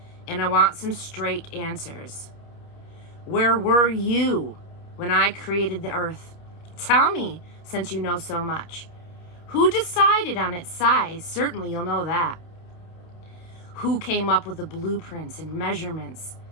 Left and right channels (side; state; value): right; late; 29 ms